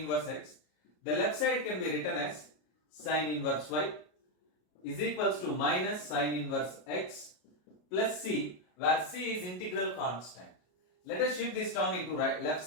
The left side can be written as sine inverse y is equals to minus sine inverse x plus c, where c is integral constant. Let us shift this term into left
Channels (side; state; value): right; late; 33 ms